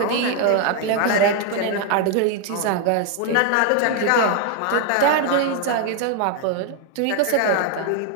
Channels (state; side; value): different; both; correlation 0.01